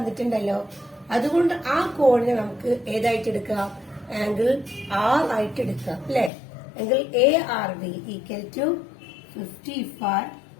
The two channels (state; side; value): drops out; right; at 6.3 s